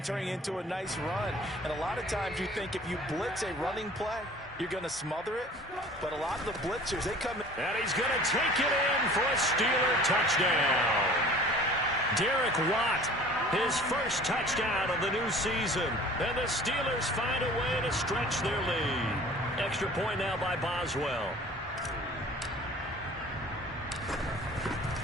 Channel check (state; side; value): normal; both; correlation 0.46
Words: turning it into a nice run. And a lot of times you think if you blitz a running play, you're going to smother it. But a lot of the blitzers, they come in. And he's going to take it in for a Steeler touchdown. Derek Watt, his first touchdown of the new season. And the Steelers find a way to stretch their lead. Extra point now by Boswell.